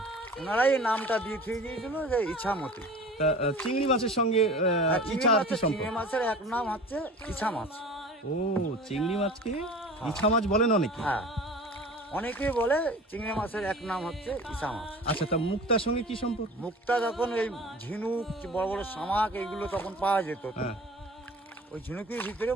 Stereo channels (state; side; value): normal; both; correlation 0.40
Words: ওনারাই এই নামটা দিয়ে থুয়ে গিয়েছিল যে ইছামতি। তা, চিংড়ি মাছের সঙ্গে ইছা আর কি সম্পর্ক? চিংড়ি মাছের এক নাম হচ্ছে ইছা মাছ। ও, চিংড়ি মাছকে ইছা মাছ বলেন অনেকে। হ্যাঁ, অনেকেই বলে চিংড়ি মাছের এক নাম হচ্ছে ইছা মাছ। আচ্ছা, তা মুক্তার সঙ্গে কি সম্পর্ক? মুক্তা যখন এই ঝিনুক, বড় বড় শামাক এইগুলো তখন পাওয়া যেত, হ্যাঁ, ওই ঝিনুকের ভিতরে